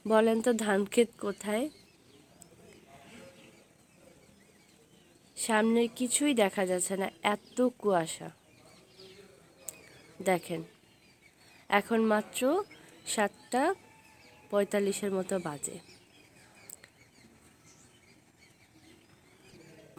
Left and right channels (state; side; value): identical; both; correlation 1.00